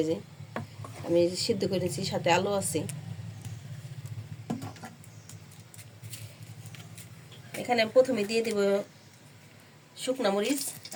এই যে আমি সিদ্ধ করে নিছি, সাথে আলু আছে। এখানে আমি প্রথমে দিয়ে দেব শুকনা মরিচ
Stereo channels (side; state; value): both; identical; correlation 1.00